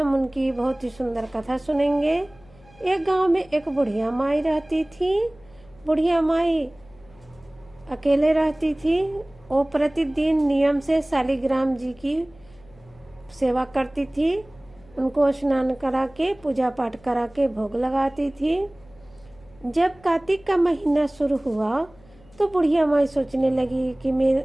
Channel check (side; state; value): left; noise; hum, 27 dB below the sound